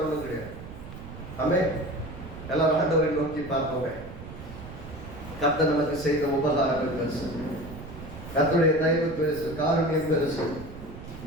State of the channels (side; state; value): right; noise; rumble, 13 dB below the sound